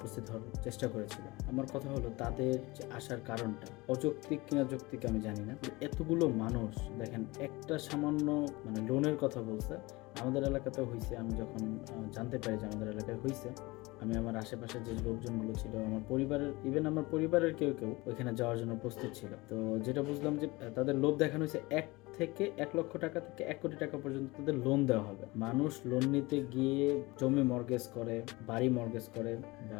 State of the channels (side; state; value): right; quieter; 22.6 dB